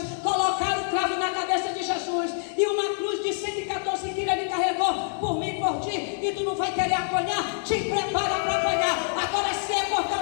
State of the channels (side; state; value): right; silent; 61 dB below the other